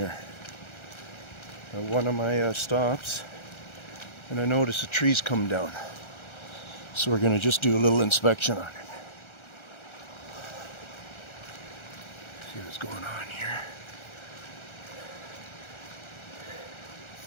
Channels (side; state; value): right; late; 1.3 ms